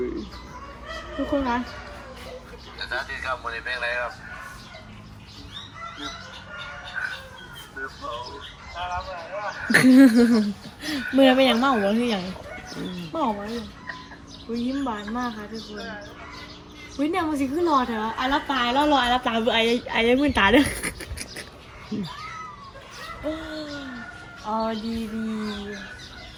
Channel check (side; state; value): both; identical; correlation 1.00